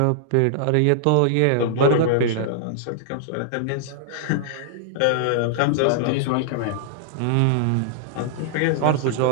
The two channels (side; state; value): both; different; correlation -0.01